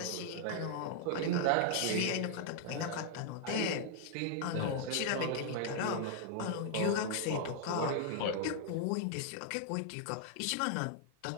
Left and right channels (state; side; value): different; both; correlation -0.01